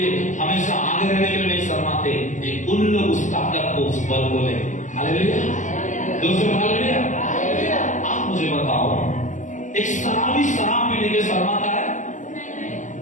हमेशा आगे रहने के लिए नहीं शर्माते, उन लोग उस ताकत को, उस बल को ले। हालेलुया। दूसरे हालेलुया। आप मुझे बताओ, एक शराबी शराब पीने के शर्माता है?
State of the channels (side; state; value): right; late; 0.36 ms